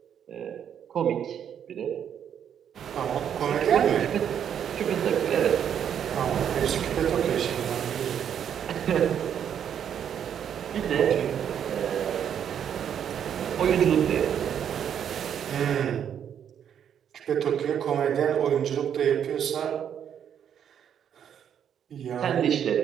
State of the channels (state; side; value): quieter; left; 8.8 dB